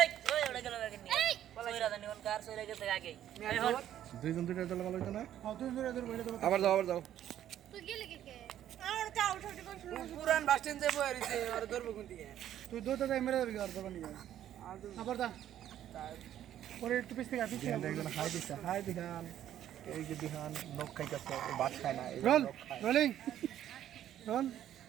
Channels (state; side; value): quieter; left; 11.4 dB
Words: ওই ওড়ে গেল গাকে নিয়ে সইরা জানি কোন কার সইরা গেছে আগে এই হল দুইজন দুইটা দল ভালো হইতো না হ্যাঁ তুই ধরে ধরে বইলে দেবো আবার যাও তুই গেলে কে আর তা উঠে উঠে কোন পুরান বাস স্ট্যান্ড যাবো আর এসে আর ধরবো কোন দিকে তুই দৌড়তে যাই মেরে যাবি আর দোকানে গিয়ে আবার দা পরে একটু পিছ থেকে একজন হাই দিছে হাই দিহান এই যে দিহান নখ খাইতেছে বাদ খায় না role rolling roll